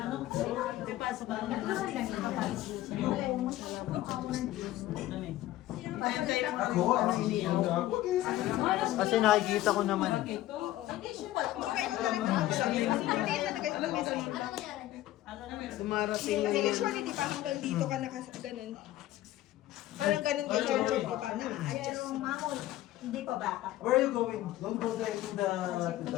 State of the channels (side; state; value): right; quieter; 14.9 dB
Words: Di pa, sa bahay. Ako, Kasi nakikita ko naman. Dumarating kasi usually di ba hanggang dito ka ganun. Parang ganun kay Jojo, di ba? Na-adjust. Pero mamon, hindi pa bata. where are you going? Don't go there to the